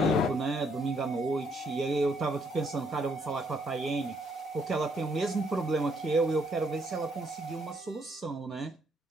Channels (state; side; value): normal; both; correlation 0.71